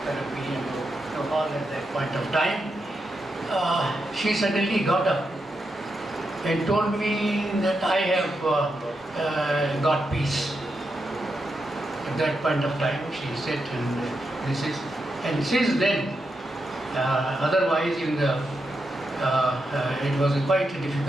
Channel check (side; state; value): both; normal; correlation 0.85